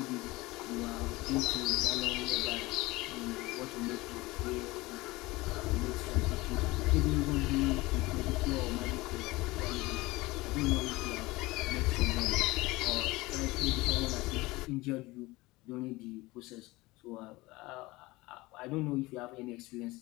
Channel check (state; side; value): quieter; right; 21.0 dB